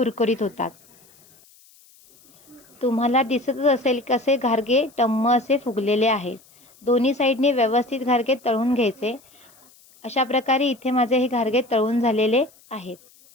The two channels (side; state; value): left; noise; hiss, 28 dB below the sound